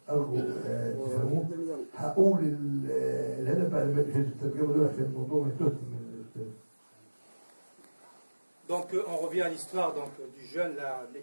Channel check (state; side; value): inverted; both; correlation -1.00